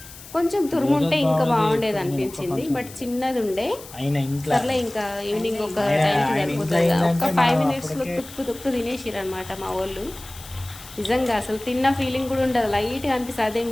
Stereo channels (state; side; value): noise; left; hiss, 17 dB below the sound